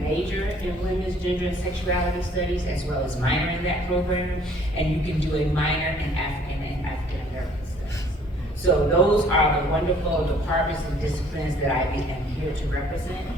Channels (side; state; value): both; normal; correlation 0.58